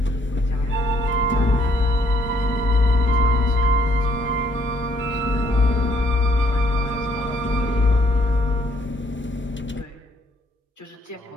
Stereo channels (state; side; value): normal; both; correlation 0.67